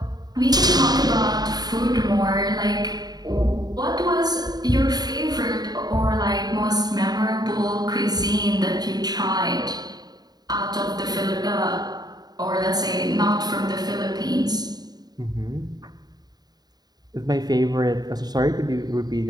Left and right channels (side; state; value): left; late; 0.19 ms